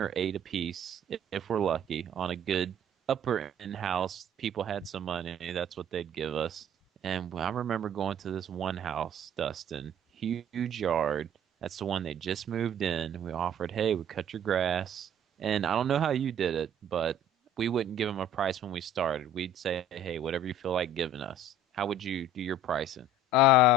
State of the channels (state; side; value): normal; both; correlation 0.50